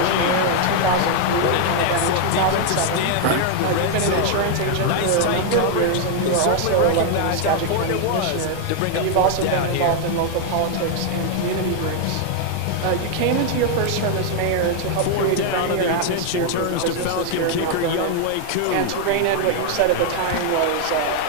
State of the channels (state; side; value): different; both; correlation 0.00